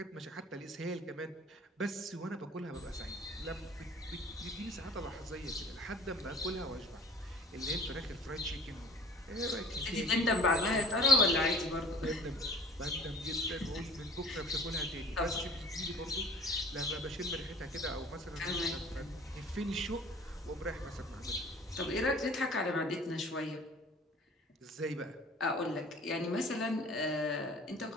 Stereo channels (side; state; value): both; normal; correlation 0.47